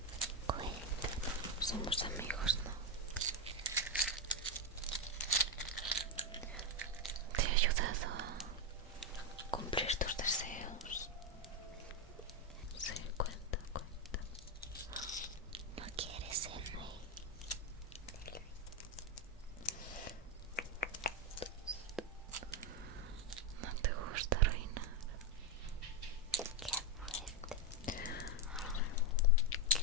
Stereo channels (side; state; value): both; normal; correlation 0.06